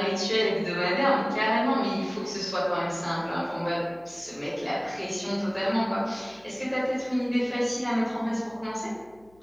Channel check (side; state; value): left; noise; hum, 30 dB below the sound